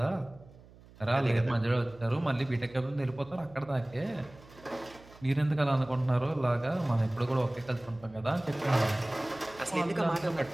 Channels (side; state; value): right; noise; hum, 23 dB below the sound